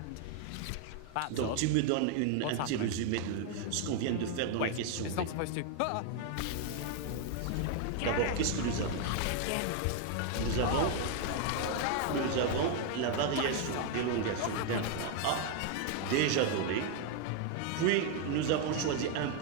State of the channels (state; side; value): different; both; correlation 0.01